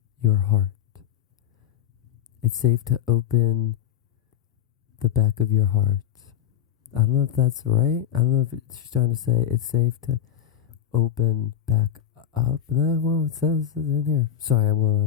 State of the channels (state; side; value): quieter; right; 9.9 dB